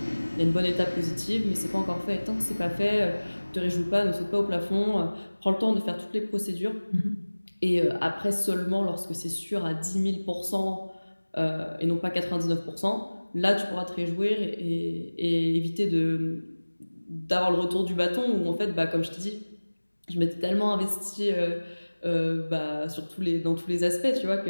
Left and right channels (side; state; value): both; inverted; correlation -1.00